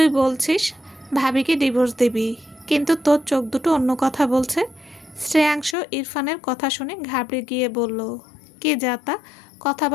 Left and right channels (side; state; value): right; drops out; at 5.8 s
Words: বলছিস ভাবিকে ডিভোর্স দিবি, কিন্তু তোর চোখ দুটো অন্য কথা বলছে। শ্রেয়াংশ ইরফানের কথা শুনে ঘাবড়ে গিয়ে বলল, কি যাতা